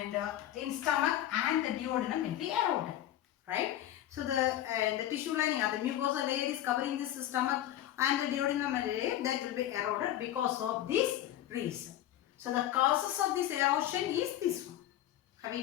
in stomach and the duodenum will be eroded, right? So the tissue lining or the mucosa layer is covering this stomach and the duodenum layer, that will be eroded because of this reason. So the causes of this erosion is this one. Have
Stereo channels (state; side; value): quieter; right; 12.7 dB